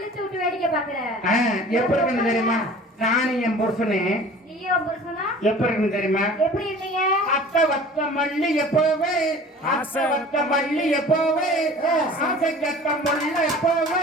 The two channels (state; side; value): normal; both; correlation 0.44